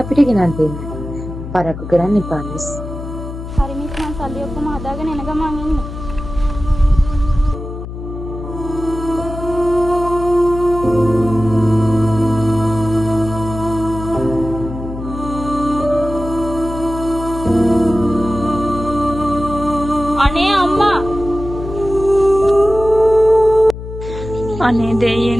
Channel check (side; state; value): left; noise; hum, 9 dB below the sound